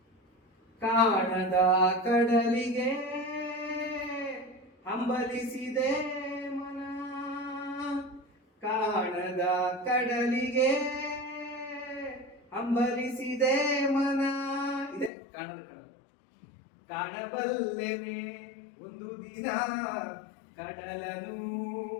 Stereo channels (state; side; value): drops out; right; at 15.1 s